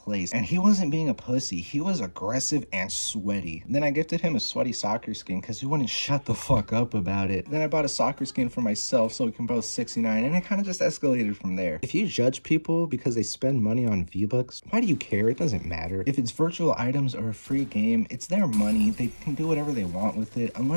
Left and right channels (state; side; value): inverted; both; correlation -1.00